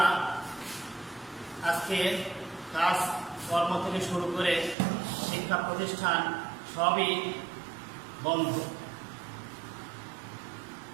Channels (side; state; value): left; drops out; at 4.8 s